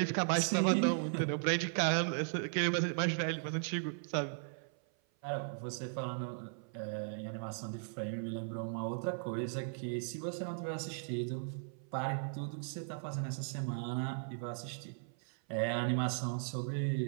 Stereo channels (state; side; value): silent; left; 53 dB below the other